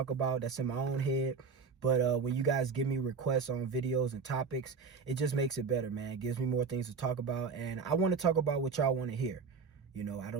about that's in my own head. But when you guys give me requests on videos and topics, it just makes it better, man. It gives me more things to talk about. And I want to talk about what y'all want to hear. You know, I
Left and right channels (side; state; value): left; quieter; 5.3 dB